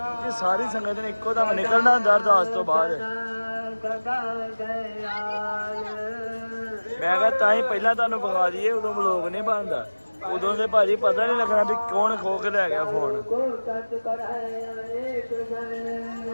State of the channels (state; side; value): inverted; both; correlation -1.00